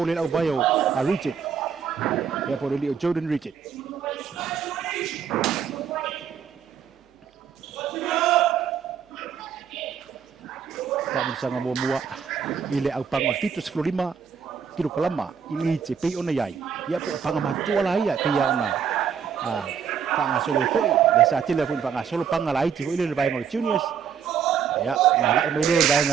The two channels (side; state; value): left; quieter; 7.4 dB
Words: au bayo a Richard. Ya por el Jordan Richard. Tak bersama mua ile au pang fitus florima kilo kalama ili te pe ona yai. Ya po pang matua la ya pe ya ona. Panga solo foi le sa tele foi panga solo panga la iti foi le vai ngol juniors. Ya na la mai le vai